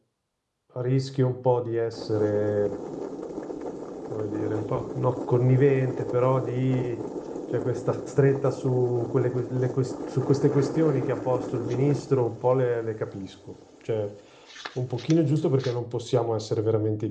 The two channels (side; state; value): both; identical; correlation 1.00